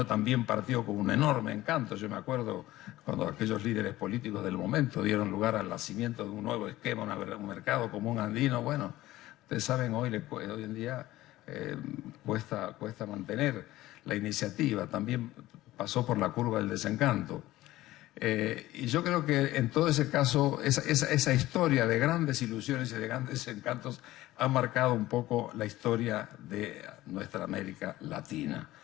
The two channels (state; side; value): quieter; right; 16.4 dB